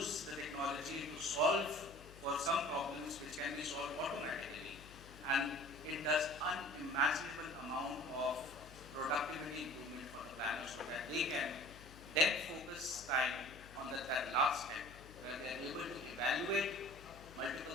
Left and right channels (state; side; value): noise; left; hum, 18 dB below the sound